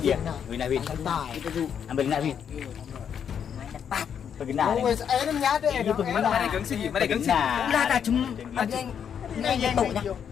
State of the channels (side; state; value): right; quieter; 8.0 dB